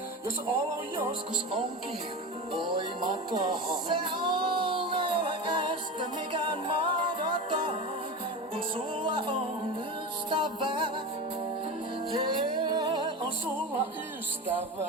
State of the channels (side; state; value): both; normal; correlation 0.25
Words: jos olo joskus onkin voimaton. Se on ei ole este mikään mahdoton, kun sulla on ystävää. Yeah, on sulla